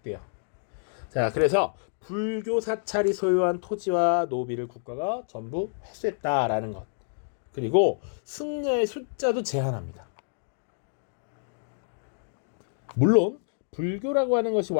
자, 그래서 불교 사찰이 소유한 토지와 노비를 국가가 전부 회수했다라는 것. 그리고 승려의 숫자도 제한합니다. 물론 불교라고 하는 것이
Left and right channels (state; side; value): silent; right; digital silence